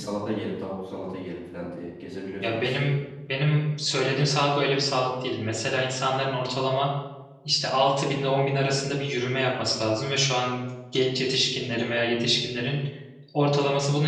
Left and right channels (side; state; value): both; identical; correlation 1.00